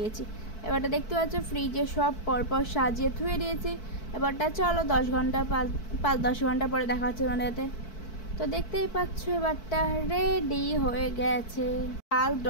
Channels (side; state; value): right; late; 4.6 ms